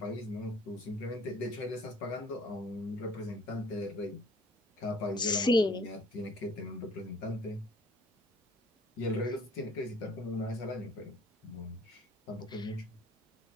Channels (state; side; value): normal; both; correlation 0.54